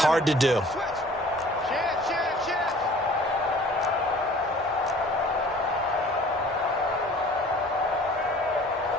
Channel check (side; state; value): both; normal; correlation 0.49